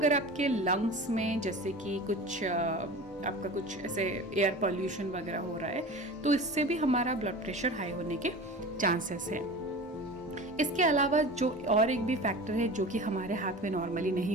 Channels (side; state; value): both; normal; correlation 0.34